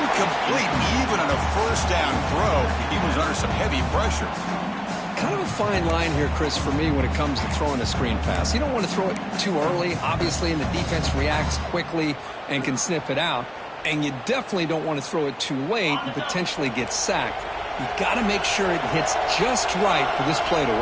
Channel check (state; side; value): identical; both; correlation 1.00